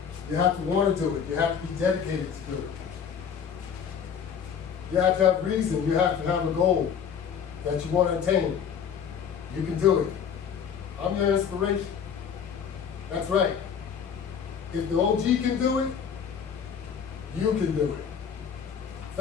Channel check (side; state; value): right; quieter; 7.5 dB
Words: You have to want to do it. You have to be dedicated to do it. You have to have reason. You have to have a goal that you want to attain. You can do it. I'm your inspiration. That's right. If the OG can do it, you can do it.